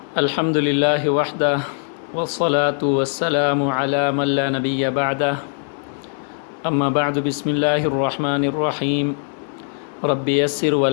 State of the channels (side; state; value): right; silent; digital silence